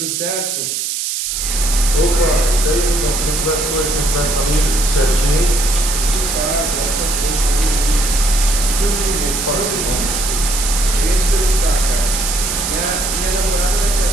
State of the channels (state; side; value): noise; right; hiss, 2 dB below the sound